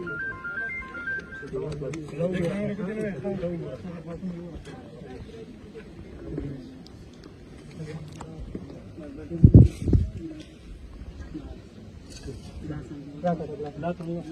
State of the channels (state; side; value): identical; both; correlation 1.00